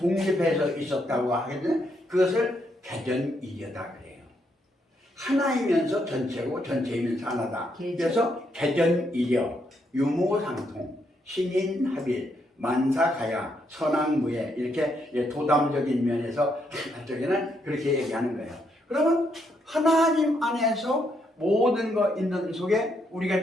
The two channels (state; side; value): normal; both; correlation 0.76